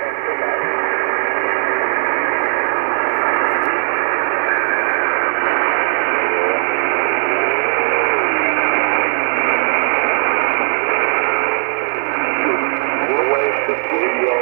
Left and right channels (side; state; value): left; silent; digital silence